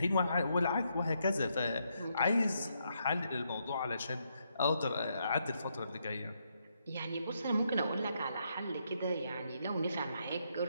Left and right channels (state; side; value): inverted; both; correlation -0.78